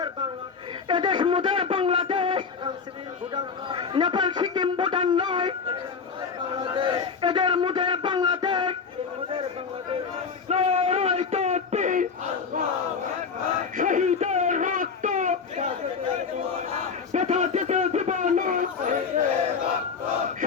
এদেশ মুদের বাংলাদেশ। নেপাল সিকিম ভুটান নয়, এদের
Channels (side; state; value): right; quieter; 5.6 dB